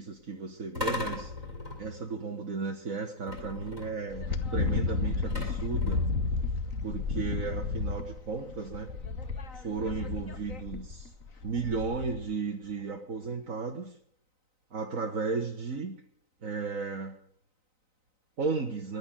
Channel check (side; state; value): left; late; 3.9 ms